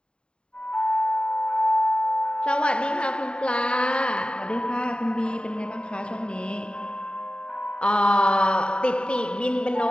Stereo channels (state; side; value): late; right; 0.051 ms